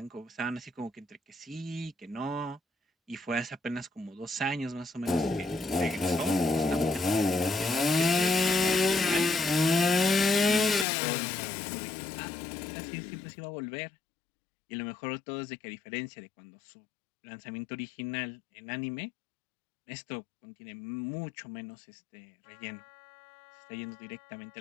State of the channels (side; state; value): right; drops out; at 10.9 s